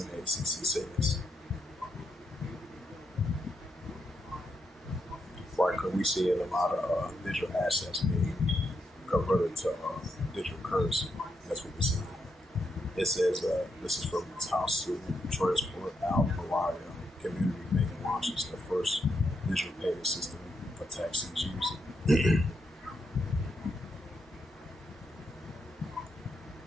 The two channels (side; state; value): both; normal; correlation 0.82